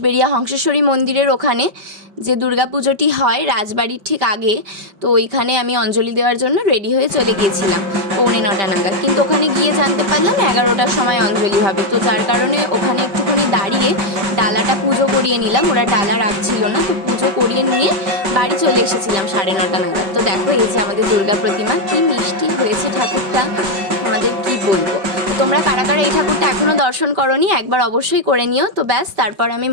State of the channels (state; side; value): late; left; 5.1 ms